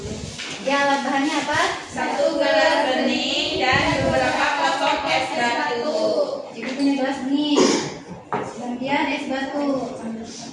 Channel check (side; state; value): both; identical; correlation 1.00